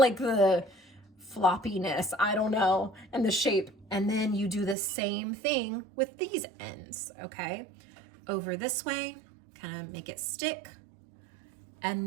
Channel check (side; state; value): left; drops out; at 4.8 s